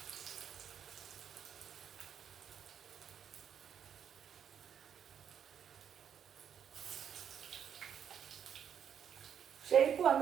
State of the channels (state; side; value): quieter; left; 8.4 dB